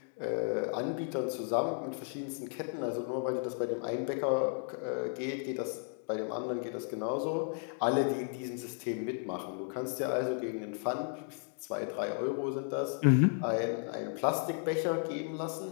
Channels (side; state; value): right; silent; 55 dB below the other